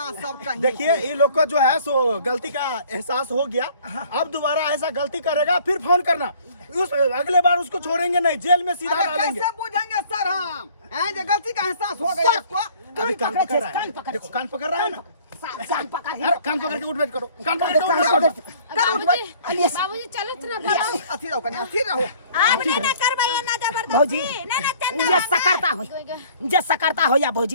सब कहीं देखिए ये लोग को जो है सो गलती का एहसास हो गया। अब दोबारा ऐसा गलती करेगा फिर फोन करना। उस अगले बार उसको छोड़ेंगे नहीं, जेल में सीधा डालेंगे। कैसे पूछेंगे सर हम हैं जो गलती का एहसास हो गया आपको? अभी कान पकड़ रहा है। देखो कान पकड़ रहा है ना। कान पकड़ अरे कान पकड़ के उठ बैठ करो। कान पकड़ के उठ बैठ करो। बाबूजी चलो ना बड़ा अथी रहो कन्या अथी रहो। आप ने ना करवाइए ना जबरदस्ती भौजी ना ना चंदा जे सकरता हो जे सकरता हो या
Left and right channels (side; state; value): both; inverted; correlation -0.55